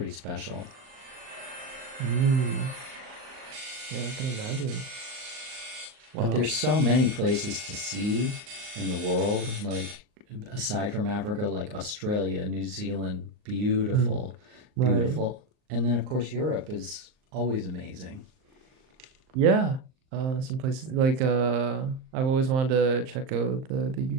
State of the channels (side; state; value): left; late; 38 ms